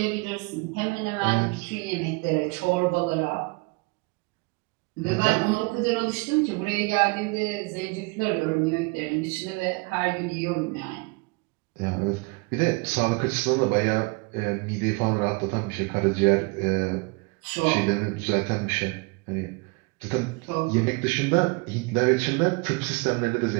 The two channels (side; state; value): left; quieter; 28.6 dB